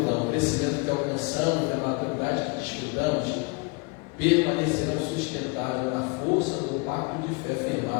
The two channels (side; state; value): right; quieter; 29.9 dB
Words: que alcançamos, a maturidade que desfrutamos, permanecerão sustentáveis na força do pacto de fé